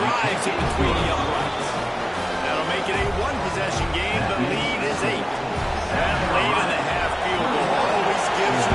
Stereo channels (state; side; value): identical; both; correlation 1.00